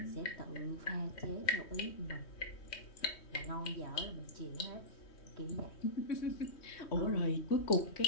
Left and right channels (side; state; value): right; late; 3.1 ms